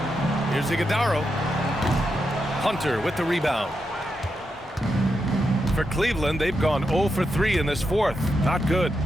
Here's Iguodaro. Hunter with the rebound. For Cleveland, they've gone 0 for 3 in this fourth. Not good.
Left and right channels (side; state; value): both; normal; correlation 0.85